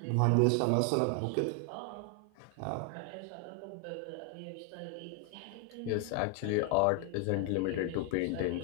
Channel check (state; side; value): different; both; correlation 0.01